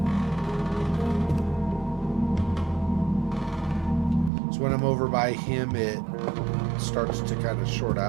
So when I'm over by him, it starts to kind of short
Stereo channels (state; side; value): drops out; left; at 4.3 s